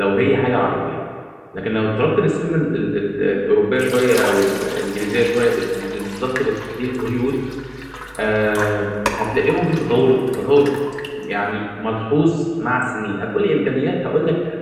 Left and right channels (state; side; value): identical; both; correlation 1.00